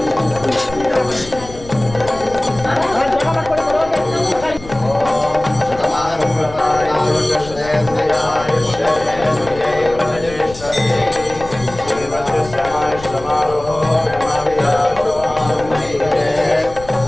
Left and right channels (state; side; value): noise; left; rumble, 15 dB below the sound